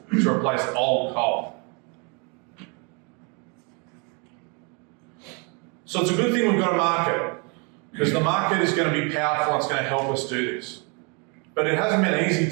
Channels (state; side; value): quieter; left; 34.1 dB